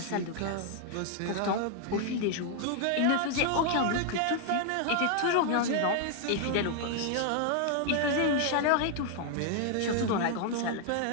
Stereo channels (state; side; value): different; both; correlation 0.00